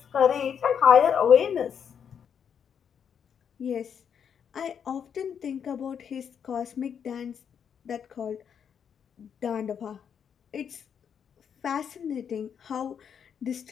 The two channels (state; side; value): quieter; right; 7.7 dB